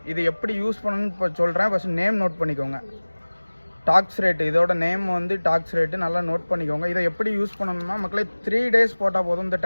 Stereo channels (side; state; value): both; inverted; correlation -1.00